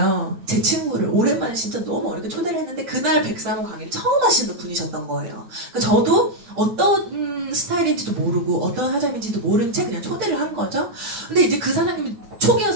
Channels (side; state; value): left; late; 8.9 ms